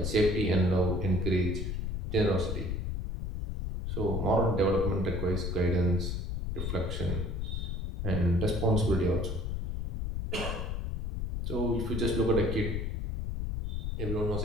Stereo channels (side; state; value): left; noise; rumble, 2 dB below the sound